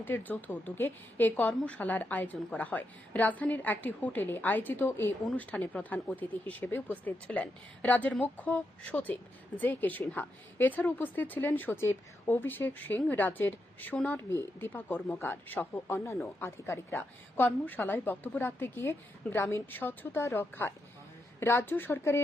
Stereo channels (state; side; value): normal; both; correlation 0.84